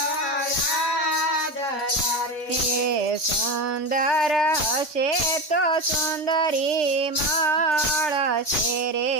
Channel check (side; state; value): right; late; 3.8 ms